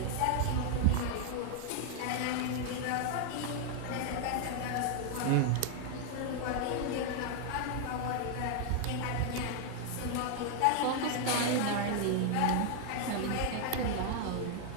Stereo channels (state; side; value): different; both; correlation 0.00